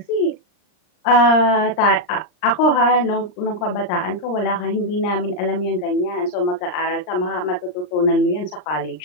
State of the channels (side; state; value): right; late; 39 ms